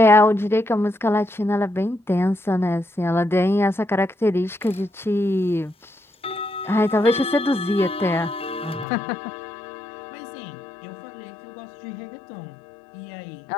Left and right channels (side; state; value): right; drops out; at 8.8 s